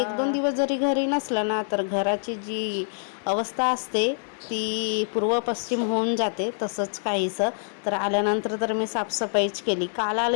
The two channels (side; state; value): right; silent; digital silence